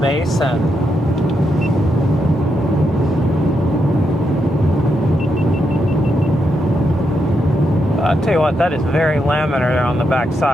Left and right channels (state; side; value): normal; both; correlation 0.82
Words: And I'll tell you what, that is very laminar on the back